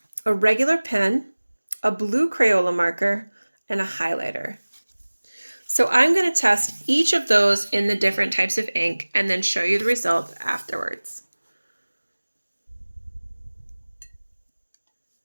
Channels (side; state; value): both; inverted; correlation -1.00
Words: a regular pen, a blue Crayola marker, and a highlighter. So I'm going to test each of those in the different types of ink and then show you the result afterwards.